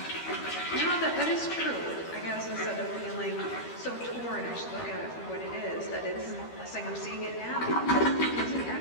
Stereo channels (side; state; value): right; late; 12 ms